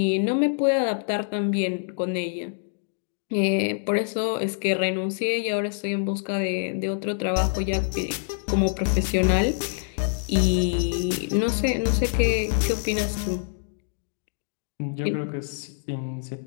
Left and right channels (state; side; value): silent; right; digital silence